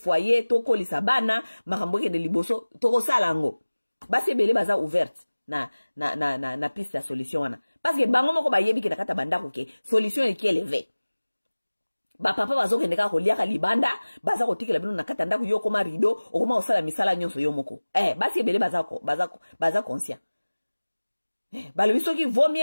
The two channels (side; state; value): both; inverted; correlation -1.00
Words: to ko lisabana, makamboke de liboso, to ko salango. Basi bele baza ouverte na piste ya solution wana. Parce que bango moko ba yebi ki nakata banda ko ke solution e ki élevé. Ba papa bazo ke ndeka ko liaka libanda, baza ko tikela bino nakata ndako yo koma rideau, okoma osala misala nyonso yo moko. Basi bele baza conscient. Bale biso ki